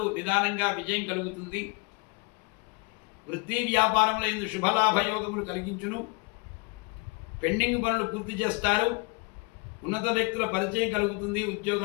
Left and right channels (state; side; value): quieter; right; 30.5 dB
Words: నిదానంగా విజయం కలుగుతుంది. వృత్తి వ్యాపారంలో ఇందు శుభలాభయోగములు కలిగించును. పెండింగ్ పనులు పూర్తి చేస్తారు. ఉన్నత వ్యక్తుల పరిచయం కలుగుతుంది.